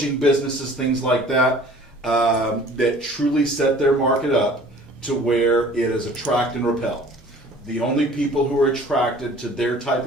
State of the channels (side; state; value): both; normal; correlation 0.49